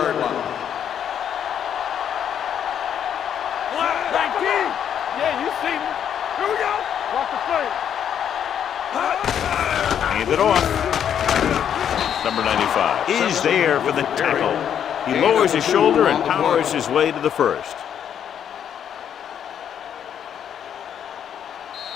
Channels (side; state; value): right; quieter; 9.0 dB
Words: line. 19. Yeah, you see me. Here we go. Watch the play. Hand it off. Number 95 is there for the tackle. He lowers his shoulder and powers his way to the first.